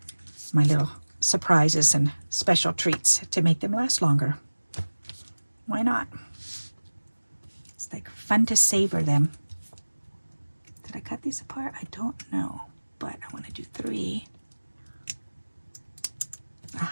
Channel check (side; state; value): both; inverted; correlation -1.00